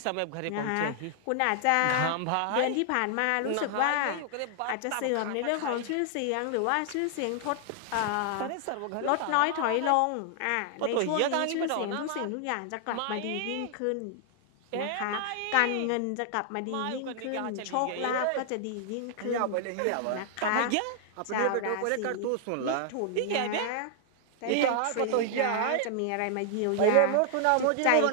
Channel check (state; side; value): different; both; correlation 0.00